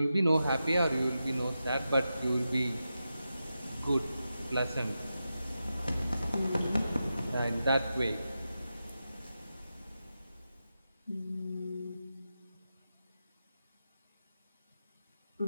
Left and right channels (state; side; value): inverted; both; correlation -0.90